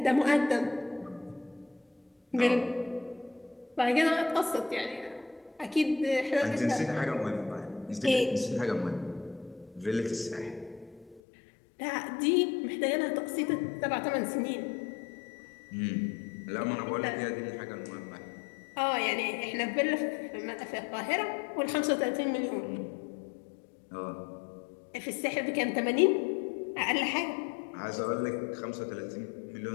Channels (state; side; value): drops out; right; at 11.2 s